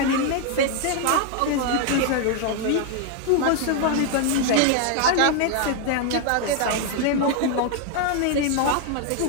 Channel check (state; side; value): different; both; correlation 0.00